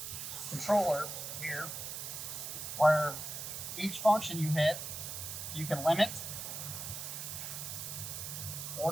controller here where each function you hit, you can limit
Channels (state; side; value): noise; right; hiss, 6 dB below the sound